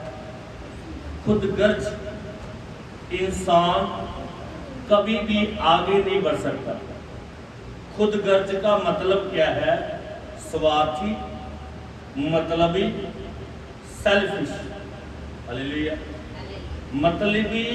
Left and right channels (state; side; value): identical; both; correlation 1.00